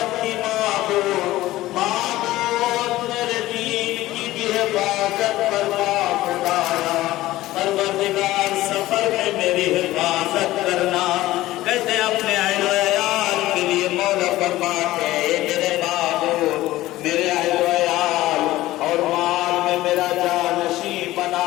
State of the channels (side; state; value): right; quieter; 16.5 dB